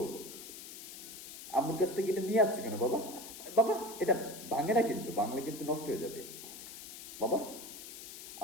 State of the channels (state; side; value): noise; left; hiss, 12 dB below the sound